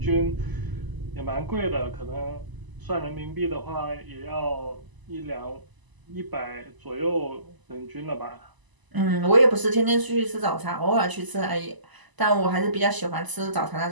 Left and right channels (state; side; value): late; left; 1.0 ms